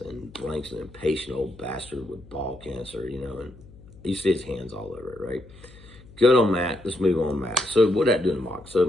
And Blank's an impatient old bastard with ball cancer, and you see his hands all over it, right? Good on Matt. Let's move on, Matt. So what did I do in the mock?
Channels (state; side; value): noise; left; hum, 21 dB below the sound